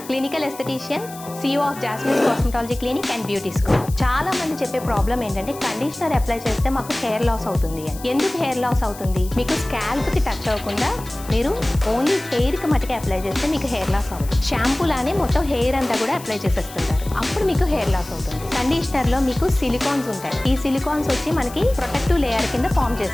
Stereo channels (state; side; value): noise; left; hiss, 16 dB below the sound